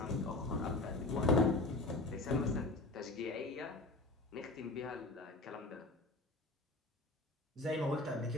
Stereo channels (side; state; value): right; quieter; 3.0 dB